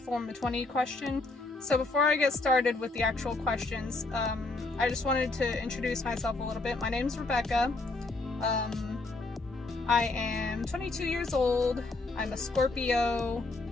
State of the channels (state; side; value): quieter; right; 3.2 dB